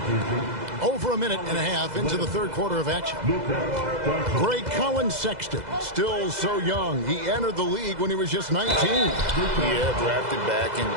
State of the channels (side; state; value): left; late; 2.0 ms